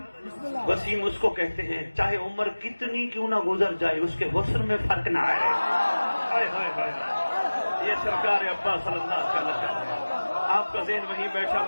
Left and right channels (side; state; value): both; inverted; correlation -1.00